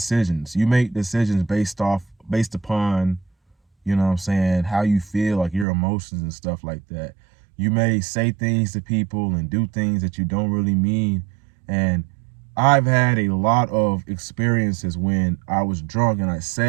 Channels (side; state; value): left; drops out; at 5.7 s